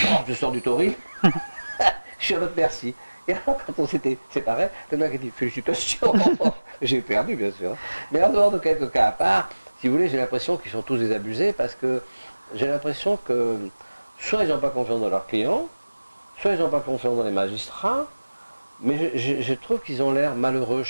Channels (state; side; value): inverted; both; correlation -1.00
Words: je sors du tauril, je suis à votre merci. Et alors quand on s'était séparés, le mec a dit, félicitations, j'ai perdu bien sûr. Mais en dehors de quelques cas à part, si vous voulez, j'ai l'impression qu'ils sont tous désabusés, parce que j'ai l'impression que soit ils n'ont pas confiance dans leurs clients, soit ils n'ont pas confiance dans les magistrats, mais je trouve qu'ils ont l'air malheureux